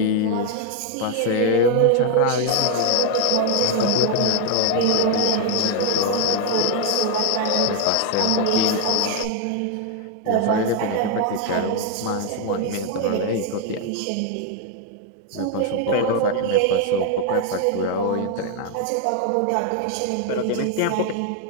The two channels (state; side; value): different; both; correlation 0.01